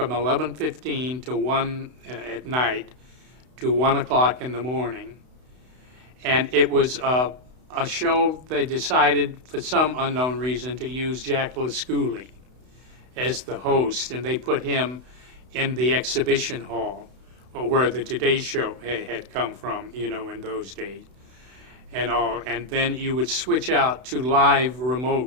11:15 to 1 at night to 1 o'clock in the morning. And it was a show they decided, for some unknown reason, to use Jack LaScoulie as the host, and they put him in the exhibition hall, where the Today Show had come from, in those days. And then you would switch out to live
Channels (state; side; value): late; left; 32 ms